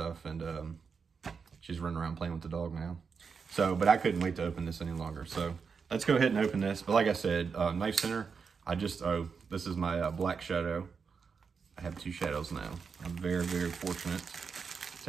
and she's running around playing with the dog now. So, but I couldn't wait to open this any longer. So let's go ahead and open this. But like I said, Knife Center, this is my black shadow. I have two shadows now. I'm very, very fortunate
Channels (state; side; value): quieter; left; 5.7 dB